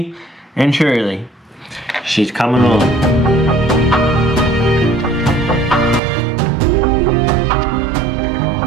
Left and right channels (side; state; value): left; drops out; at 6.0 s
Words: and surely. She's coming along.